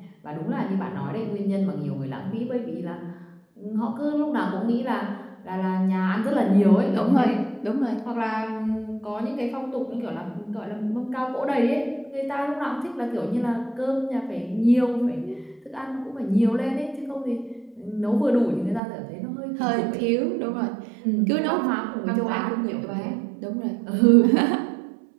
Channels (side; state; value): left; drops out; at 18.8 s